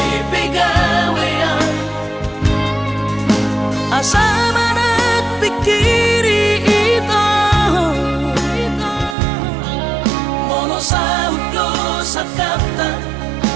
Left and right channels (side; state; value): left; drops out; at 9.2 s